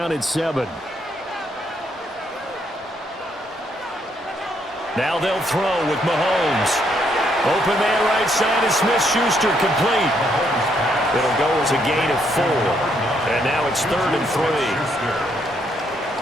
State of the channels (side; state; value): both; normal; correlation 0.73